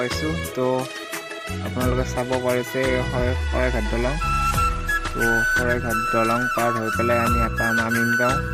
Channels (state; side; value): identical; both; correlation 1.00